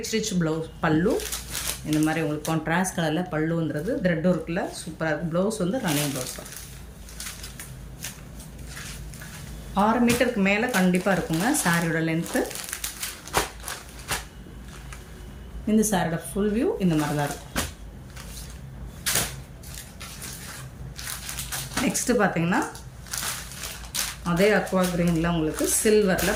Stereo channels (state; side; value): identical; both; correlation 1.00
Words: ப்ளவுஸ் பல்லு. இந்த மாதிரி உங்களுக்கு கான்ட்ராஸ்ட் கலரில் பல்லு வந்துடுது. த்ரெட் ஒர்க்கில் சூப்பராக இருக்குது. ப்ளவுஸ் வந்து ரன்னிங் ப்ளவுஸ் தான். 6 மீட்டருக்கு மேலே கண்டிப்பாக இருக்குங்க சாரியோட லென்த்து. இந்த சாரியோட ஃபுல் வியூ இந்த மாதிரி தான் இருக்கும். நெக்ஸ்ட்டு பார்த்தீங்கன்னா அதே அக்வா கிரீனில் உங்களுக்கு